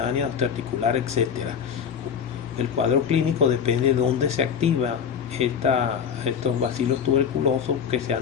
osteoarticular, etc. El cuadro clínico depende de dónde se activa estos bacilos tuberculosos que se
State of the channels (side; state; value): right; quieter; 7.5 dB